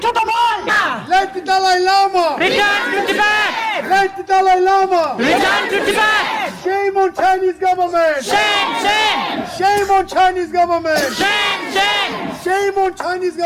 to the world. Let the Dalai Lama. Return to Tibet. Let the Dalai Lama. Return to Tibet. Shame on Chinese government. Shame. Shame on Chinese government. Shame. Shame on Chinese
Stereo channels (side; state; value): both; identical; correlation 1.00